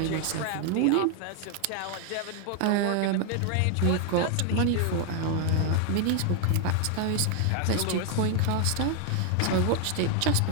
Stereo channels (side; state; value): both; different; correlation 0.01